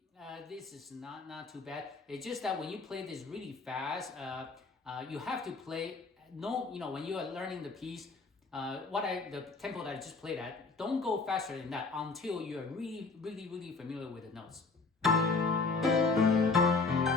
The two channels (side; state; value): right; quieter; 4.1 dB